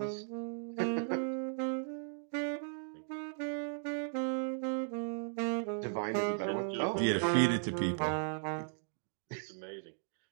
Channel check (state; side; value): silent; left; digital silence